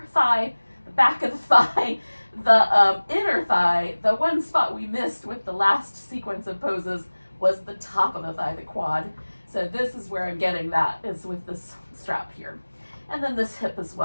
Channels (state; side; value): inverted; both; correlation -1.00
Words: thigh, the back of the thigh, the inner thigh. The one spot we missed with the last sequence of poses was the top of the thigh, the quad. So this is where I'm getting that, is with this strap here. And then this hip as